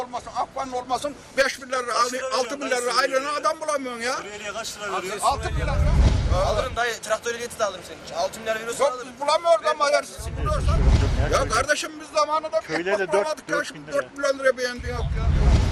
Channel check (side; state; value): both; identical; correlation 1.00